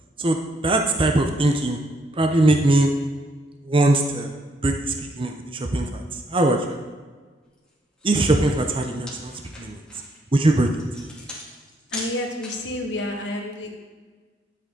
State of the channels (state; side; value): normal; both; correlation 0.72